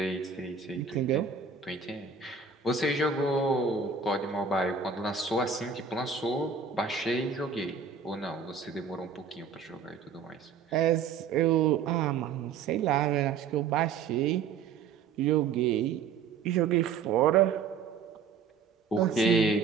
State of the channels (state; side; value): quieter; left; 5.9 dB